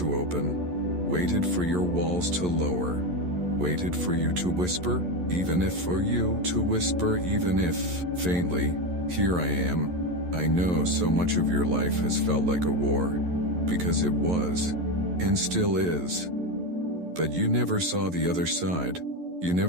open. Waited for your walls to lower. Waited for you to whisper, even if for you to whisper, even if, faintly, here I am. I know so much of your life has felt like a war, because it was, and still is. But you never saw the other side. You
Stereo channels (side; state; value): left; late; 11 ms